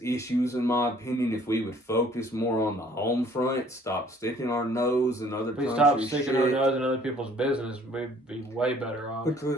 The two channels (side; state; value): both; normal; correlation 0.57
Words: issues, in my opinion, if we would focus more on the home front, stop sticking our nose in other countries' stop sticking our shit. nose in other people's business, we'd be way better off.